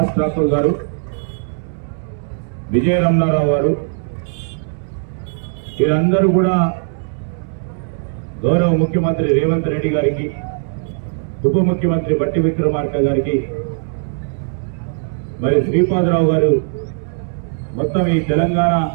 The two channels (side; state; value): left; silent; digital silence